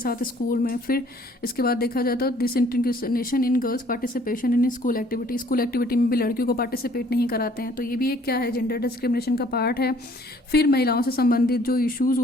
स्कूल में। फिर इसके बाद देखा जाता है disintegration in girls participation in school activity में भी लड़कियों को पार्टिसिपेट नहीं कराते हैं, तो ये भी एक क्या है जेंडर डिस्क्रिमिनेशन का पार्ट है। फिर महिलाओं से संबंधित जो इश्यूज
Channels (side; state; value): both; normal; correlation 0.58